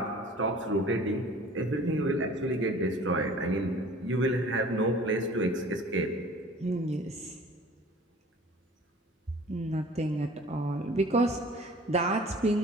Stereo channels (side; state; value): both; normal; correlation 0.47